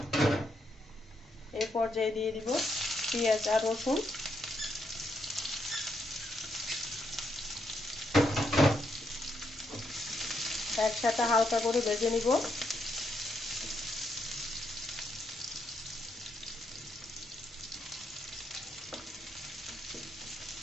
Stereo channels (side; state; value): both; normal; correlation 0.78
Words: এই পর্যায়ে দিয়ে দিব পেঁয়াজ আর রসুন। একসাথে হালকা করে ভেজে নিব।